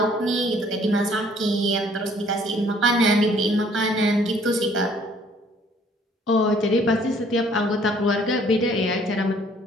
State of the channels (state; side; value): normal; both; correlation 0.60